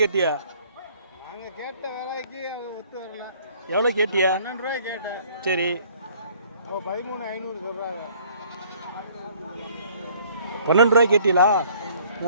கேட்டியா? நாங்கள் கேட்ட வேலைக்கு ஒத்து வரலாம். எவ்வளோ கேட்டியா? 12 ரூபாய் கேட்டேன். சரி, 13,500 சொல்கிறாங்க. 12 ரூபாய் கேட்டீங்களா?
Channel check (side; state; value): both; inverted; correlation -0.57